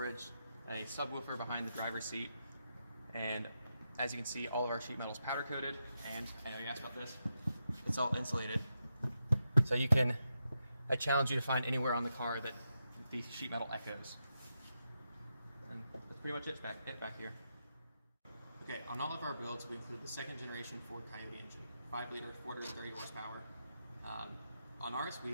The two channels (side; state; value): both; inverted; correlation -0.86